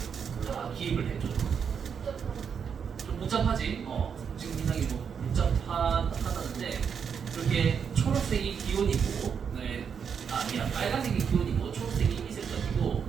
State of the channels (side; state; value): left; quieter; 6.9 dB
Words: 다 기입을 해줘. 좀 복잡하지? 지금 굉장히 뭐 복잡하다는데 이렇게 초록색이 기온이고 미안 빨간색이 기온이고 초록색이 이색적이고